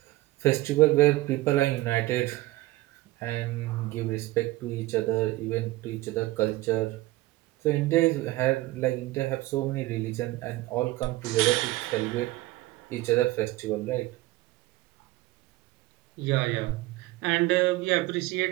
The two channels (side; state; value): left; quieter; 18.4 dB